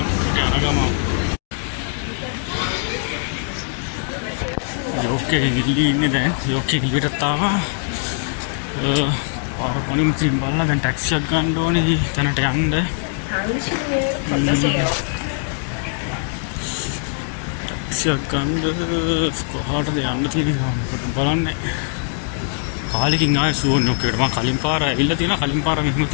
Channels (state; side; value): silent; right; 65 dB below the other